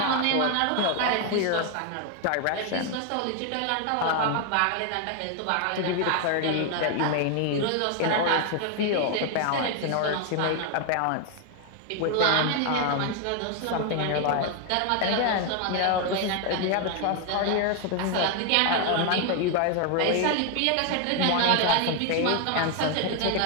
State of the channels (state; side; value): different; both; correlation 0.01